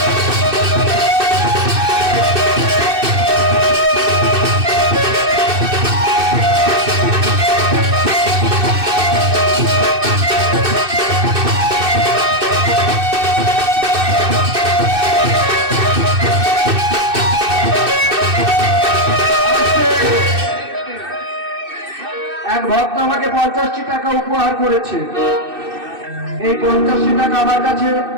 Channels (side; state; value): left; late; 2.6 ms